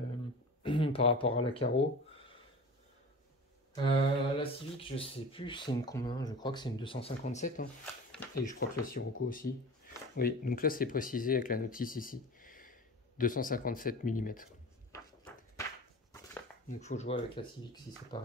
par rapport à la carreau. La Civic, je sais plus c'est une combien, je crois que c'est une 257 hein. Et je crois que la Sirocco aussi. Oui, donc là c'est précisé avec la notice ici. 257 mm. Donc il faut jouer avec la Civic si c'est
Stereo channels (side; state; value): both; normal; correlation 0.36